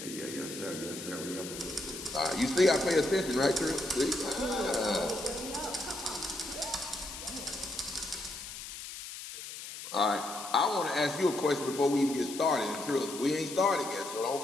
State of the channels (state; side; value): noise; left; hiss, 10 dB below the sound